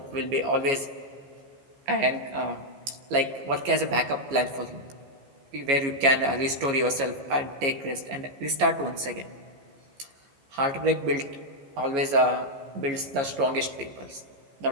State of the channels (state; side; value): late; left; 15 ms